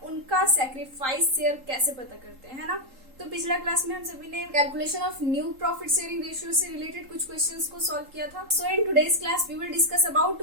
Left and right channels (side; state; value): left; late; 3.8 ms